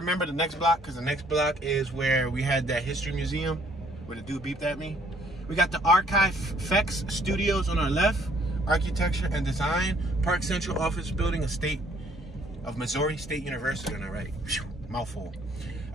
the next block, because the next block is where we had that history museum where the dude beeped at me. We got the Archive Fex Studios on our left. Architecture and Design. Park Central Office Building, a state of Missouri State University on our right. Whew, mouthful.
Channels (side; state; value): both; normal; correlation 0.63